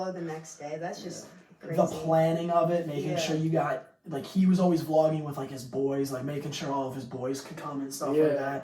the next day. That's just crazy. The planning of it, making sure you got like he was always vlogging with like his boys, like making sure all of his boys could come and stuff like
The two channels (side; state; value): both; identical; correlation 1.00